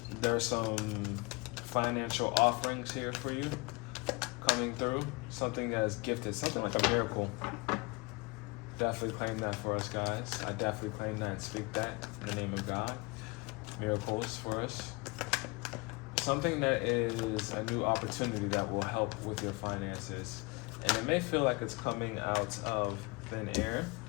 There's some financial offerings here for you coming through. Something that is gifted, something like a miracle. Definitely claim that for us, guys. I definitely claim that and speak that in the name of God. Miracles for us. Something that is a new opportunity that will help with your finances. And it may feel like it's coming out of thin air.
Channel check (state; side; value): quieter; right; 26.9 dB